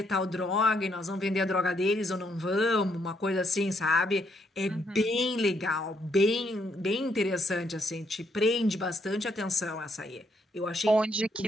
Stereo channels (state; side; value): normal; both; correlation 0.74